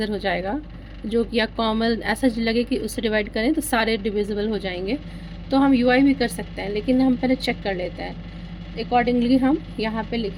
हो जाएगा, जो कि या कॉमन ऐसा लगे कि उससे डिवाइड करें तो सारे डिविजिबल हो जाएंगे, तो हम UI भी कर सकते हैं। लेकिन हम पहले चेक कर लेते हैं, अकॉर्डिंगली हम यहाँ पे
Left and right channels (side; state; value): both; identical; correlation 1.00